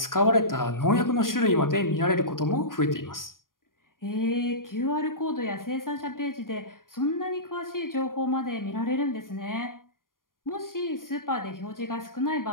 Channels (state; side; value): late; right; 0.91 ms